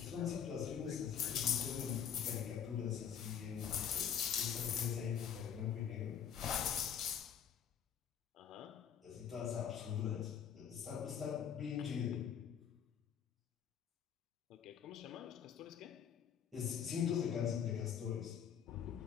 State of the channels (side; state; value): right; quieter; 8.3 dB